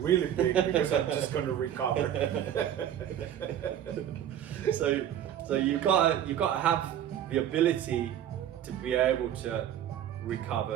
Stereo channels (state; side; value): quieter; left; 10.4 dB